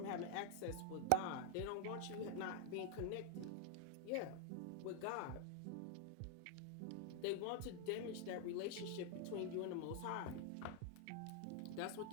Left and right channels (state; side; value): different; both; correlation 0.00